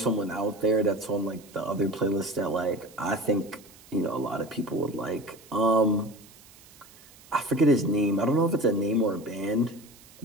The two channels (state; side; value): noise; right; hiss, 24 dB below the sound